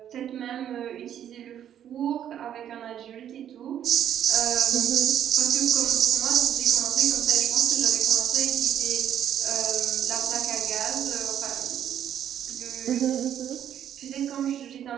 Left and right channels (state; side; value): quieter; left; 10.1 dB